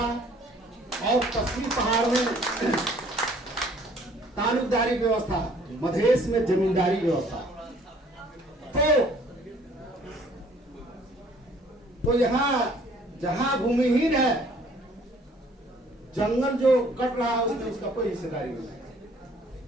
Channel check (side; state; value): both; normal; correlation 0.57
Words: और पश्चिमी पहाड़ में तालुकदारी व्यवस्था, मधेश में जमींदारी व्यवस्था। तो यहाँ जहां भूमिहीन है, जंगल जो कट रहा है उसमें उसका कोई हिस्सेदारी नहीं है।